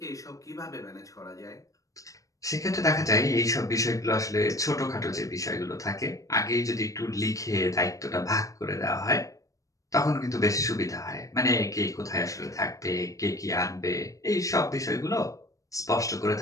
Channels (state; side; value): late; right; 0.16 ms